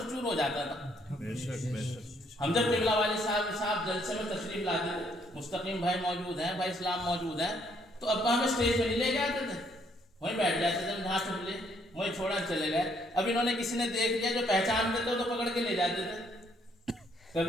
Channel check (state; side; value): normal; both; correlation 0.68